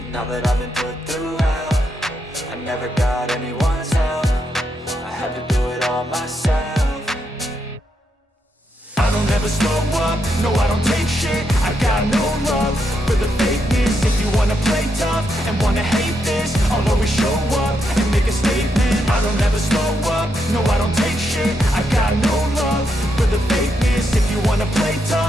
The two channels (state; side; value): normal; both; correlation 0.81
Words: that I've been put through hell, I never got anyone's help, I had to do it all myself. I don't ever slow up, no I don't take shit, I got no love for the fakeness. If you wanna play tough and wanna hate this, I'll always show up and make a statement. I don't ever slow up, no I don't take shit, I got no love for the fakeness. If you wanna play